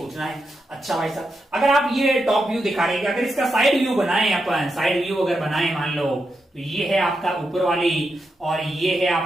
है। अच्छा भाई साहब अगर आप ये टॉप व्यू दिखा रहे हैं, अगर इसका साइड व्यू बनाए अपन, साइड व्यू अगर बनाए मान लो, तो ये है आपका ऊपर वाली और ये है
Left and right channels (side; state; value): both; normal; correlation 0.85